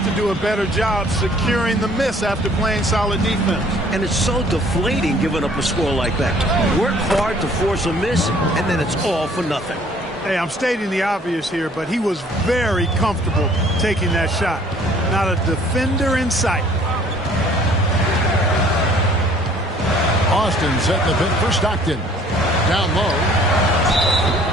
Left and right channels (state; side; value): normal; both; correlation 0.56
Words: to do a better job securing the miss after playing solid defense. And it's so deflating giving up a score like that. Work hard to force a miss, and then it's all for nothing. Hey, I'm stating the obvious here, but he was very comfortable taking that shot. Not a defender in sight. Austin setting the pin for Stockton. Down low.